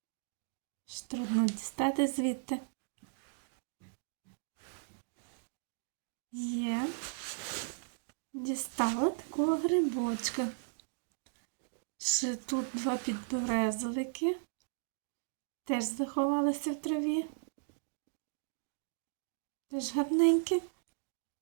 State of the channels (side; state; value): left; silent; digital silence